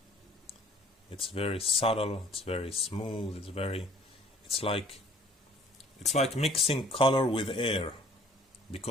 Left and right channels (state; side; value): normal; both; correlation 0.55